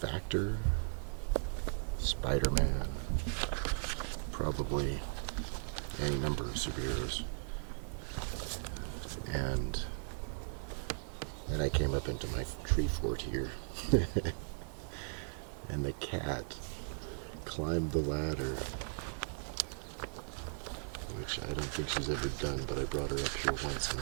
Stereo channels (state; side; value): silent; left; digital silence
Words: Spider-Man, probably any number of superheroes. And I came up into my tree fort here. And the cat climbed the ladder, which I don't think she's ever done, but I brought her up here once and